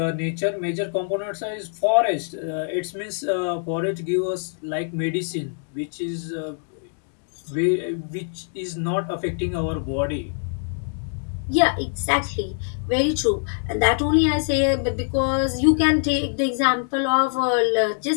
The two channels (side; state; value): right; silent; digital silence